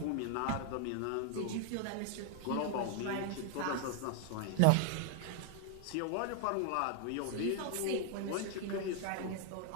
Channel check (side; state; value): both; different; correlation 0.00